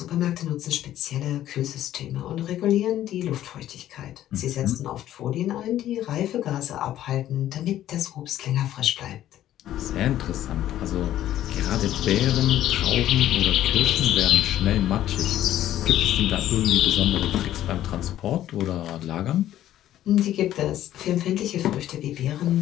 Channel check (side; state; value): right; quieter; 12.6 dB